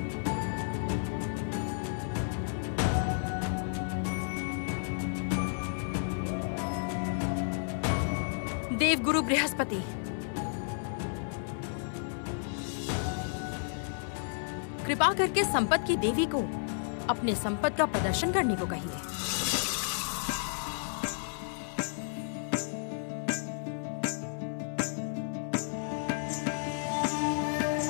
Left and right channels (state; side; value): silent; right; digital silence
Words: देवगुरु बृहस्पति, कृपा करके संपत्ति की देवी को अपने संपत्ति का प्रदर्शन करने को कहिए।